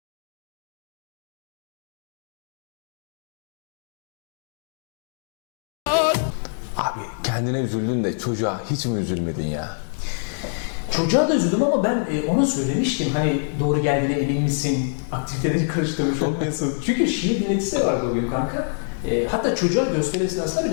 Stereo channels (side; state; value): right; silent; digital silence